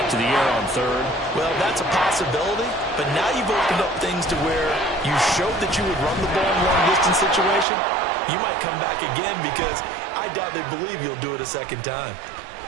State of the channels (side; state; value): left; drops out; at 7.7 s